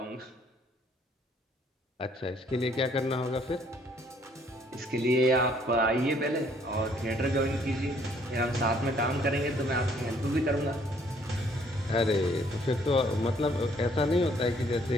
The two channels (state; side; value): normal; both; correlation 0.63